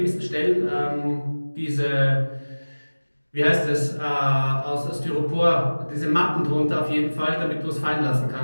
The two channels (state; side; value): inverted; both; correlation -1.00